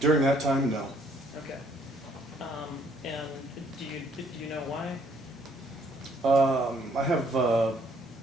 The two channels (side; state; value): both; normal; correlation 0.64